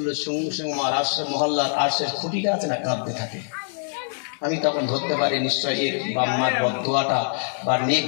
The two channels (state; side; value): silent; right; 60 dB below the other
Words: সঙ্গে সঙ্গে আমার আরশের মহল্লার আরশের খুঁটিটা আছে না কাঁদতে থাকে। আমি তখন ধরতে পারি নিশ্চয় এই বাম্মার বদদোয়াটা বা নেক